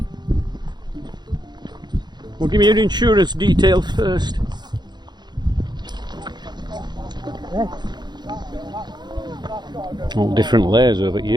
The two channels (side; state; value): left; late; 0.21 ms